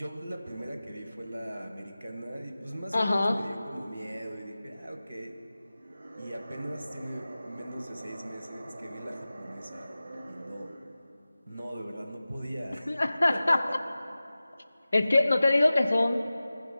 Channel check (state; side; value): inverted; both; correlation -0.97